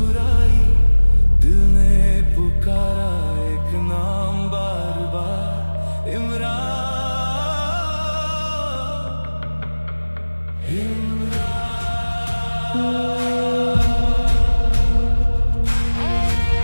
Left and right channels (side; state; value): both; inverted; correlation -1.00